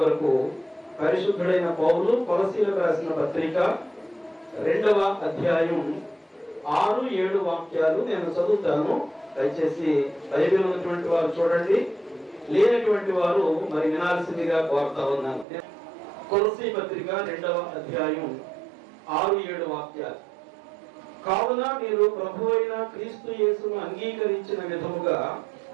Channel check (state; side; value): drops out; left; at 15.5 s